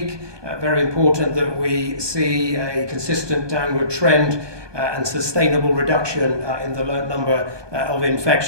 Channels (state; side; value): late; left; 1.2 ms